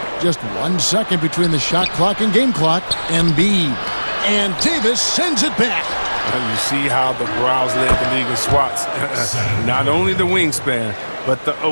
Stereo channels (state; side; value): inverted; both; correlation -1.00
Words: Just 1 second between the shot clock and game clock. Embiid. And Davis sends it back. And you see how the Browns led the league in swats. Not only the wingspan, but the